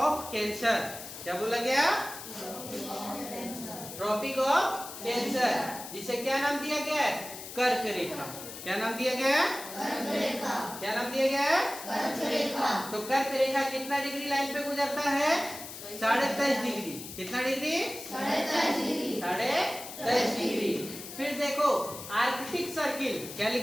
cancer. क्या बोला गया? ट्रॉपिक ऑफ कैंसर, जिसे क्या नाम दिया गया है? कर्क रेखा। क्या नाम दिया गया है? कर्क रेखा। क्या नाम दिया गया है? कर्क रेखा। तो कर्क रेखा कितना डिग्री लाइन पे गुजरता है? 23.5 डिग्री। कितना डिग्री? 23.5 डिग्री। 23.5 डिग्री। फिर देखो आर्कटिक सर्किल। क्या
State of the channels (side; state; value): left; noise; hiss, 11 dB below the sound